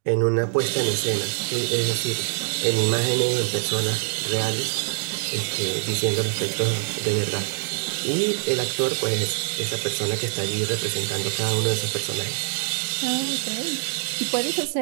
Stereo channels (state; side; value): silent; left; 62 dB below the other